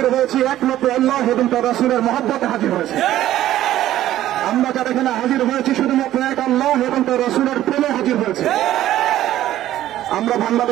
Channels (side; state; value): left; quieter; 13.3 dB